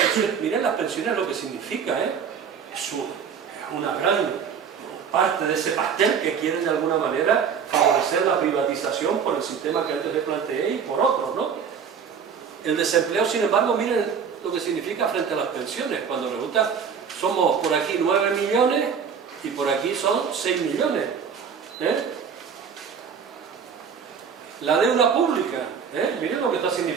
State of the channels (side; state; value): left; quieter; 6.8 dB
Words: miren las pensiones, lo que significa, es una gran parte de ese pastel que quieren de alguna manera favorecer la privatización por el sistema que antes les planteé y por otros, ¿no? El desempleo, sin embargo, miren lo que significa frente a las pensiones, cuando resulta, somos por aquí 9 millones y por aquí son 6 millones. La deuda pública, miren lo que está